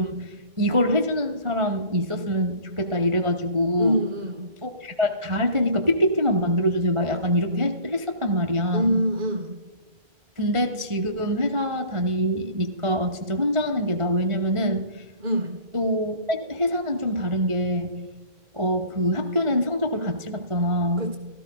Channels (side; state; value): left; late; 1.5 ms